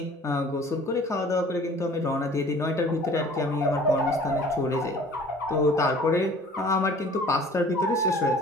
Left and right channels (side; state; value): both; normal; correlation 0.49